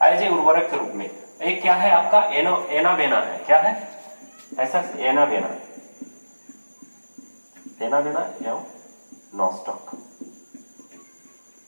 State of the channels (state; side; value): inverted; both; correlation -1.00